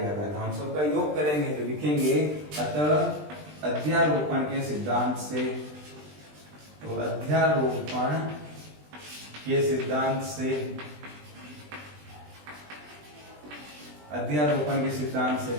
रहा है, हम सबका योग करेंगे तो लिखेंगे अतः अध्यारोपण के सिद्धांत से, तो अध्यारोपण के सिद्धांत से, अध्यारोपण के सिद्धांत से,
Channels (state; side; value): late; left; 20 ms